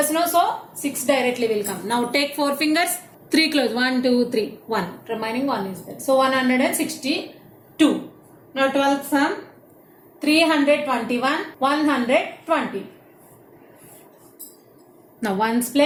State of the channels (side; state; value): both; identical; correlation 1.00